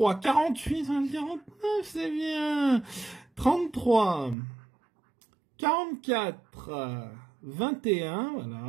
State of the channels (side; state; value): left; drops out; at 4.4 s